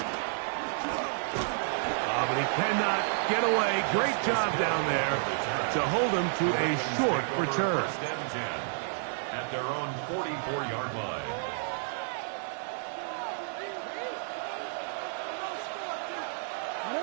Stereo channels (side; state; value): left; silent; 57 dB below the other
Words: But he cannot get away. Great job down there to hold him to a short return. At their own 44-yard line.